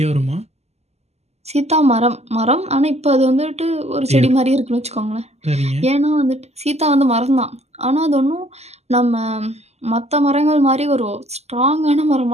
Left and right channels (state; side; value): late; left; 0.31 ms